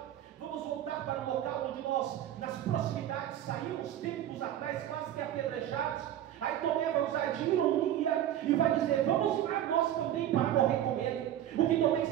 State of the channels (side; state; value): left; quieter; 11.7 dB